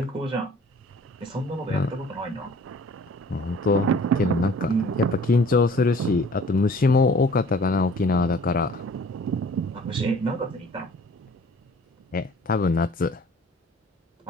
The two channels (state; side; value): normal; both; correlation 0.51